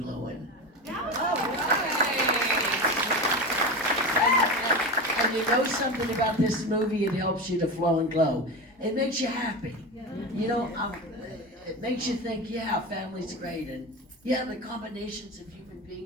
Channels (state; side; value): normal; both; correlation 0.24